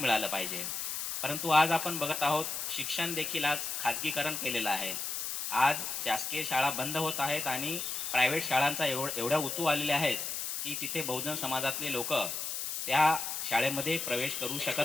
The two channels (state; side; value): noise; left; hiss, 3 dB below the sound